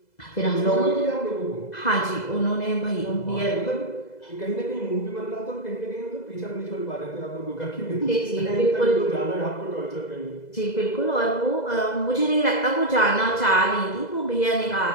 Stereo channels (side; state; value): right; late; 2.0 ms